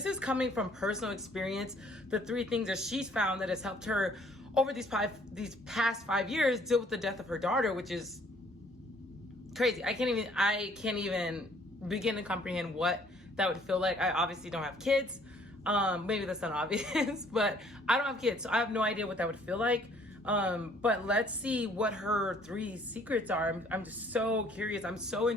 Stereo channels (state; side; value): normal; both; correlation 0.60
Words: is coming from personal experience. The 3 things that she's found that has helped her over these past 5 years deal with the death of her daughter, which is crazy. I can't even begin to comprehend what that would feel like. I obviously don't have kids. Maybe that's not obvious, but I don't have kids, so I have no idea what that would feel like. But let's see what her 3 secrets are. I'm just so curious. I'm so